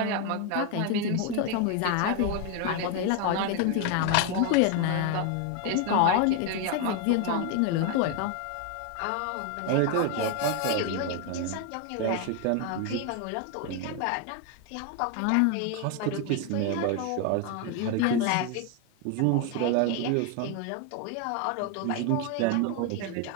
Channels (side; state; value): both; different; correlation 0.01